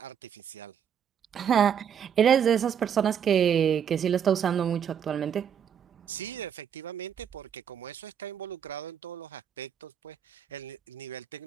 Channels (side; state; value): left; quieter; 8.3 dB